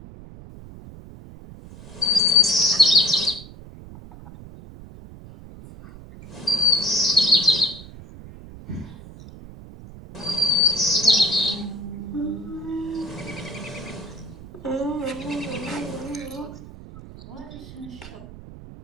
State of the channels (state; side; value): noise; right; rumble, 16 dB below the sound